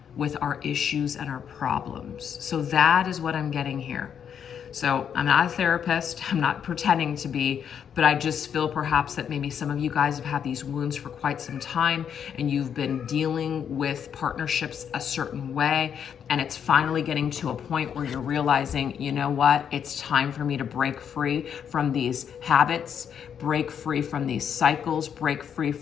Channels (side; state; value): right; quieter; 8.1 dB